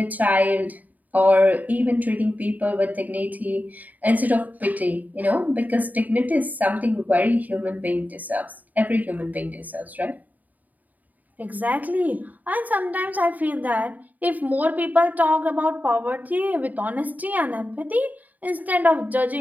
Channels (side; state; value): left; late; 0.079 ms